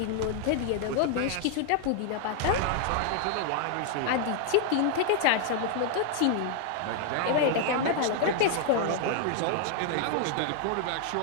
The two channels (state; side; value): different; both; correlation 0.00